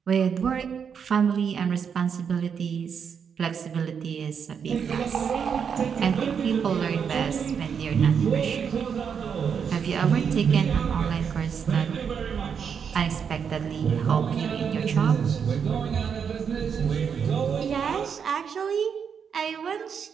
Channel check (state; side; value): quieter; left; 7.0 dB